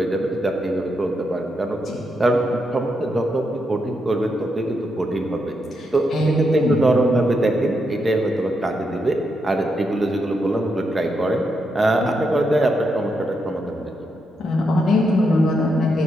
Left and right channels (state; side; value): normal; both; correlation 0.82